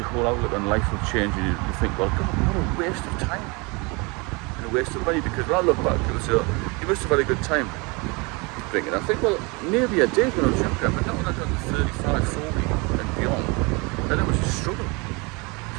whole outlook on life will change, and you think, well, God, what a waste of time and a waste of money. Because when I look back, people say, oh, you must have had a good time drinking. I think, well, maybe I did when I was younger, but not when I got to 35, 40.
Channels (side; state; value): left; quieter; 28.3 dB